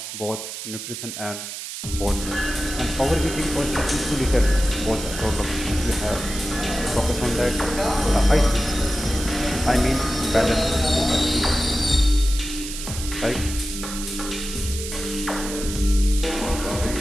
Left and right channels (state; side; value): noise; right; hiss, 8 dB below the sound